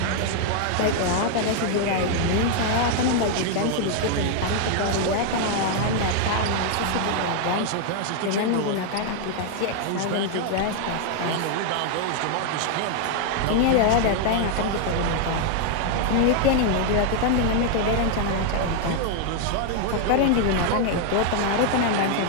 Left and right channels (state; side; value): different; both; correlation 0.00